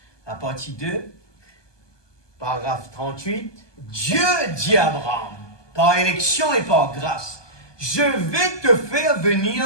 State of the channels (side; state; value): right; late; 1.2 ms